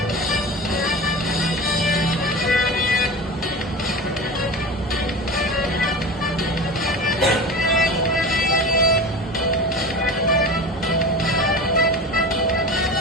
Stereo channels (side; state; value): both; normal; correlation 0.30